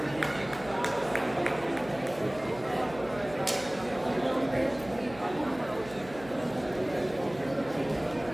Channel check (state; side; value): noise; right; hum, 17 dB below the sound